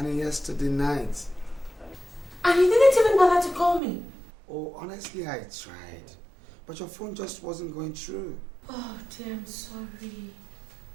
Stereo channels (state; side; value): drops out; left; at 3.8 s